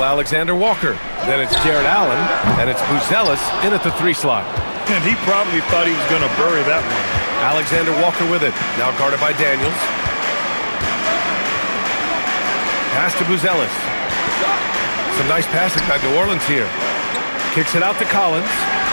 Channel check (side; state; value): both; inverted; correlation -1.00